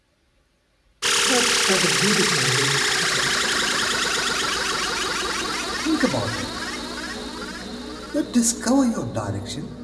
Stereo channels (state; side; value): identical; both; correlation 1.00